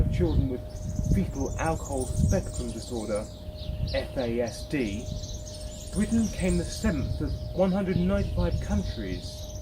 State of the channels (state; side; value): identical; both; correlation 1.00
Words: children with fetal alcohol spectrum disorder, FASD, Britain came the 7th of 195 countries